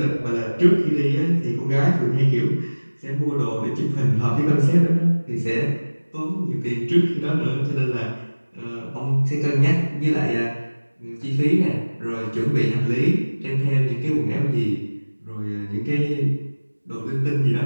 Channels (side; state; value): both; inverted; correlation -1.00